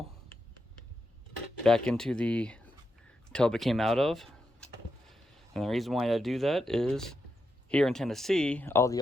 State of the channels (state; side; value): normal; both; correlation 0.85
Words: back into the tub it came out of. And the reason why I do that is here in Tennessee, all the